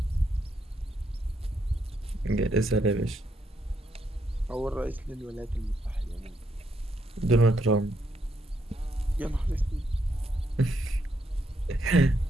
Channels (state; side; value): normal; both; correlation 0.77